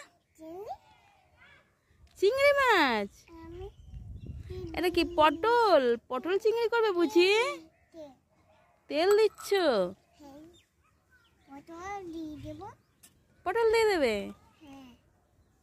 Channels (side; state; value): both; identical; correlation 1.00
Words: চিংড়ি মাছ। এটা কি পটল? পটল চিংড়ি করবে বুঝি? তেল দিচ্ছ? পটল দিয়ে দেবে?